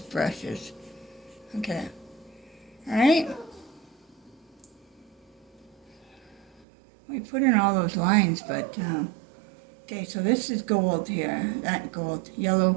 brushes. Okay. Alright? We put in all those lines, but, okay, so this is gold here. That gold.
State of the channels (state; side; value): drops out; left; at 6.7 s